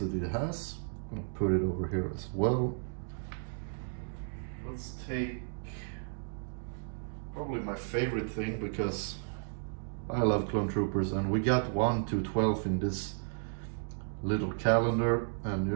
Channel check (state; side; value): silent; left; digital silence